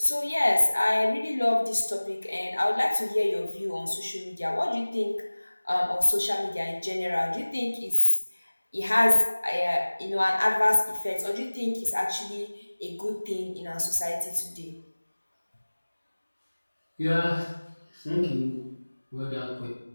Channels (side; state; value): both; inverted; correlation -1.00